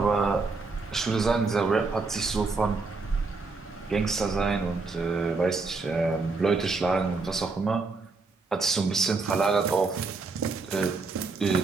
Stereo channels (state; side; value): quieter; left; 4.1 dB